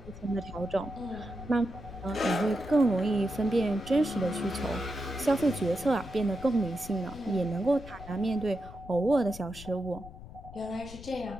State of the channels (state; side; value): noise; left; rumble, 15 dB below the sound